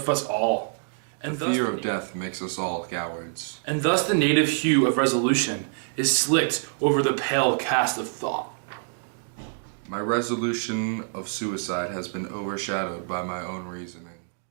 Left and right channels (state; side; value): silent; left; digital silence